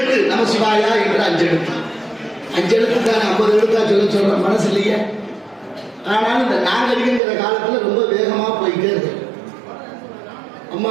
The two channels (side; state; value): left; drops out; at 7.2 s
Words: நம சிவாயா என்று 5 எழுத்து. 5 எழுத்து தான் 50 எழுத்தா சொல்ற மனசு இல்லையே. ஆனாலும் இந்த நாகரிகங்கிற காலத்துல ரொம்ப வேகமா போயிட்டே இருக்கு. அம்மா